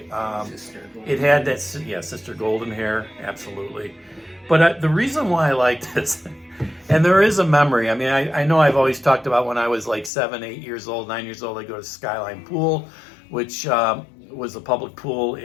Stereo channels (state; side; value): drops out; right; at 10.1 s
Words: It had that, Sister Golden Hair, absolutely. But the reason why I like this, and there is a memory. I mean, I know I've always talked about when I was like 7, 8 years old, 9 years old, I go to Skyline Pool, which was a public pool